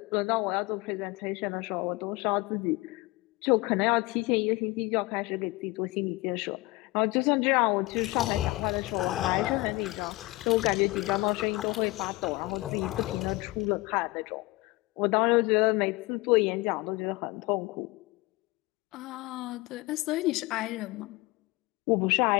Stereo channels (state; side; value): quieter; right; 22.0 dB